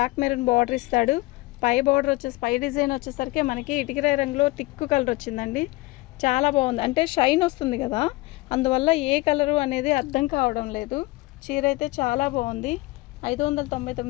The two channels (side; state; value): right; quieter; 21.3 dB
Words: మెరూన్ బార్డర్ ఇస్తాడు. పై బార్డర్ పై డిజైన్ వచ్చేసరికి మనకి ఇటుకరాయి రంగులో టిక్కు కలర్ వచ్చిందండి. చాలా బాగుంది, అంటే షైన్ వస్తుంది కదా, అందువల్ల ఏ కలరు అనేది అర్థం కావడం లేదు. చీర అయితే చాలా బాగుంది.